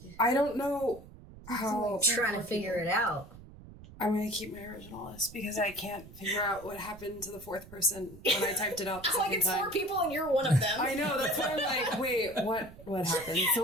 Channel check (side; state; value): right; noise; rumble, 18 dB below the sound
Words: I don't know how Trying to figure it out. I'm going to keep my original list because I can't figure out what happened to the 4th person when I typed it out the Like second it's time. 4 people and you're one of them. I know, that's why I'm like, wait, what happened? So